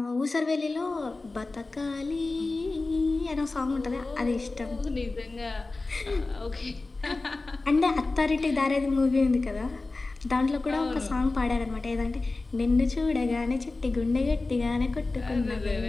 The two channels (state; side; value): quieter; right; 3.4 dB